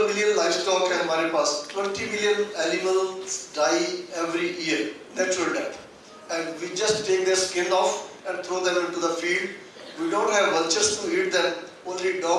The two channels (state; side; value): identical; both; correlation 1.00